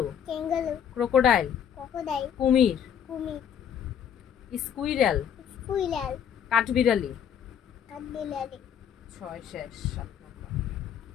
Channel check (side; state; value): right; quieter; 8.6 dB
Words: kangaroo, ক্রোকোডাইল, crocodile, কুমির, কুমির, স্কুইরেল, squirrel, কাঠবিড়ালি, কাঠবিলারি 6 শেষ। 7 নম্বর।